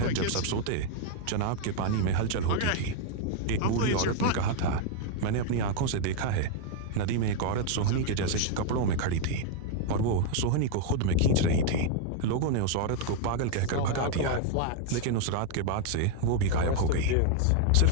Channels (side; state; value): both; different; correlation 0.00